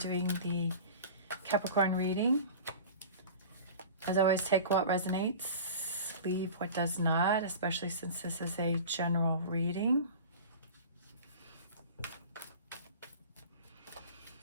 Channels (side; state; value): both; inverted; correlation -0.37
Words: the Capricorn reading. As always, take what resonates, leave what does not, especially since this is a general reading.